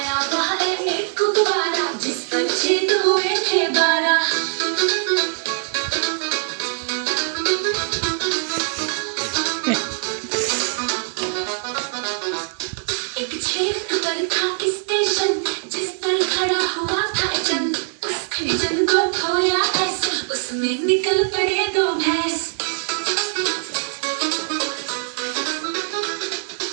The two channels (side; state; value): left; silent; 64 dB below the other